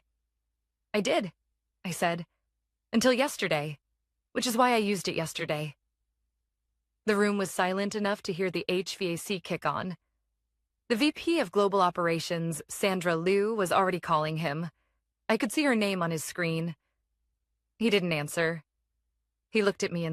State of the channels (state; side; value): identical; both; correlation 1.00